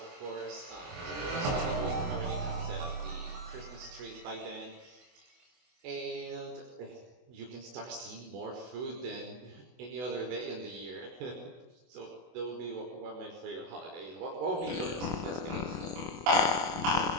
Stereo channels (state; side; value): late; left; 24 ms